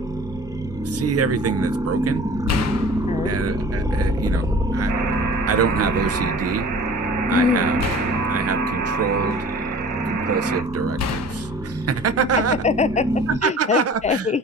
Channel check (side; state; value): both; normal; correlation 0.44